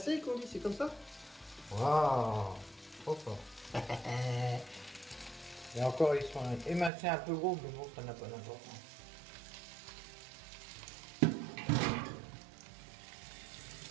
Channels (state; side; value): drops out; left; at 6.9 s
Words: qu'on dit, c'est comme ça? Waouh, trop fort. Et encore, ils sont émincés un peu gros, mais bon, ça n'a pas d'importance.